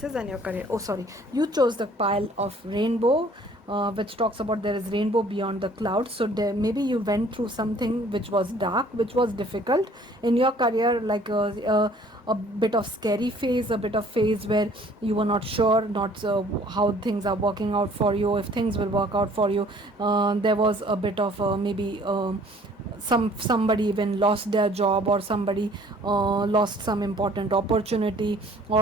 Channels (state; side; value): normal; both; correlation 0.56